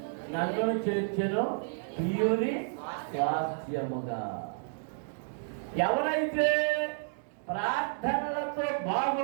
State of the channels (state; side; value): silent; left; 57 dB below the other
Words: నన్ను చేర్చెను ప్రియుని స్వాస్థ్యముగా. ఎవరైతే ప్రార్థనలతో